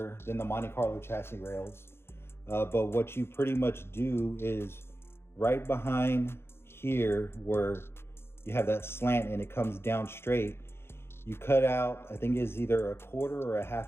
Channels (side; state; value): right; late; 0.12 ms